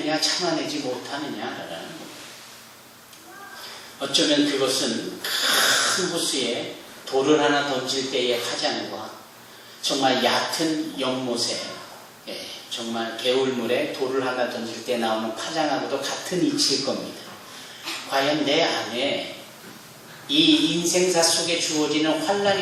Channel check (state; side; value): identical; both; correlation 1.00